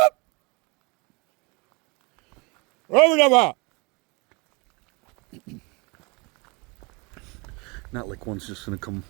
Not like one's just gonna come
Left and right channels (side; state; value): left; quieter; 28.9 dB